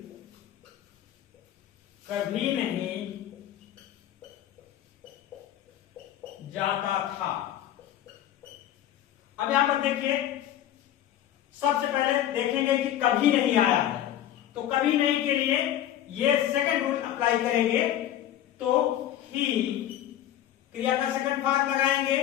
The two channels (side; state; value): right; quieter; 11.7 dB